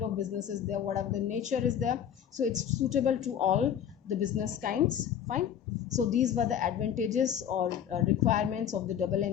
of business is there, whatever the nature is there, so it's suitable to all the business kinds. Fine. So these were the advantages or requirements of the double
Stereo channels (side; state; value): right; quieter; 9.2 dB